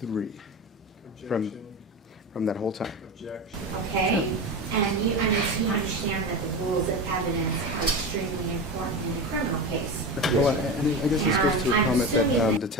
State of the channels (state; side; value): normal; both; correlation 0.24